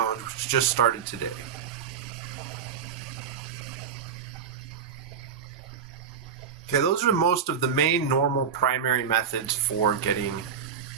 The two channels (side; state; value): left; quieter; 7.3 dB